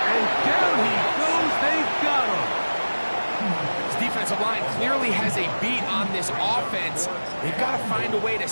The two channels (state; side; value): inverted; both; correlation -1.00